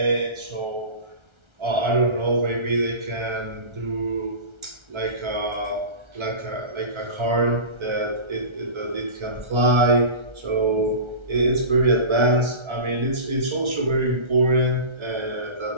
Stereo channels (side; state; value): left; late; 1.3 ms